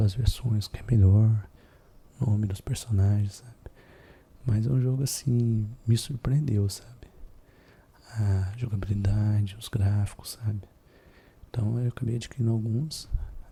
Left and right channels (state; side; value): identical; both; correlation 1.00